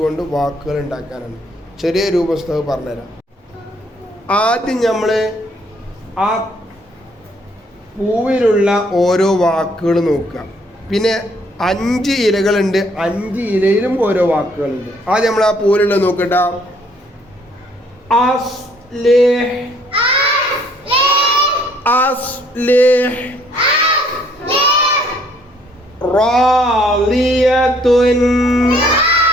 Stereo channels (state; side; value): normal; both; correlation 0.64